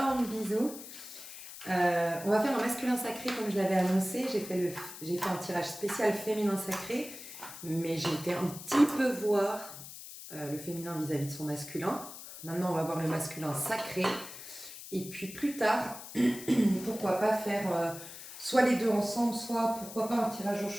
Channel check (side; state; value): left; noise; hiss, 13 dB below the sound